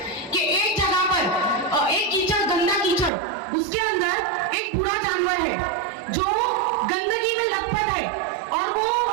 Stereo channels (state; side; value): drops out; left; at 3.1 s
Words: कि एक जगह पर एक कीचड़, गंदा कीचड़, उसके अंदर एक बुरा जानवर है जो गंदगी में लथपथ है, और वो